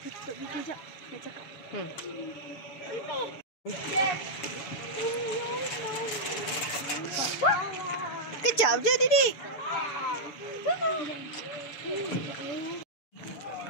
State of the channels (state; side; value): late; right; 6.9 ms